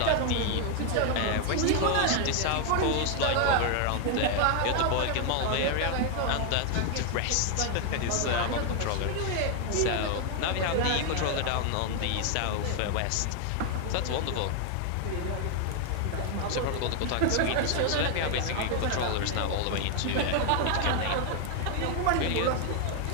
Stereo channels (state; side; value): different; both; correlation 0.00